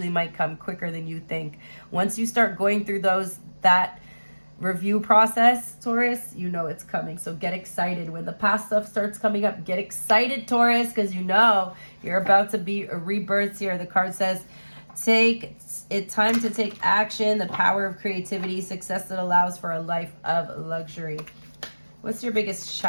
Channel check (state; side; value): inverted; both; correlation -1.00